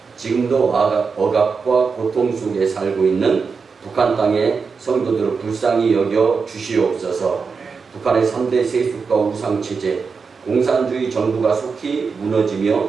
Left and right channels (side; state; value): left; quieter; 5.2 dB